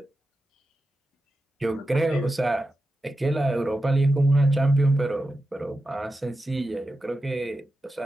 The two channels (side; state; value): both; normal; correlation 0.91